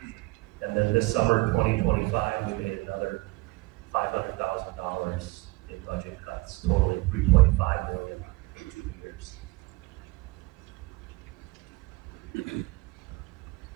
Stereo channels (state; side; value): quieter; left; 23.0 dB